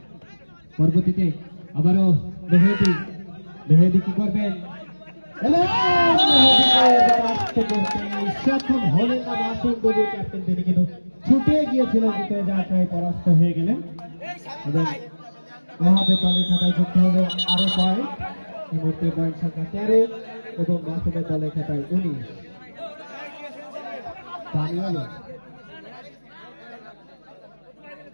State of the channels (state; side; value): inverted; both; correlation -1.00